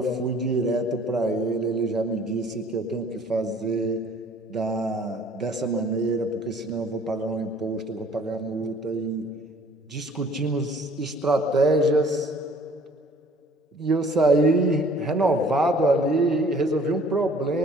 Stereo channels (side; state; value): both; normal; correlation 0.55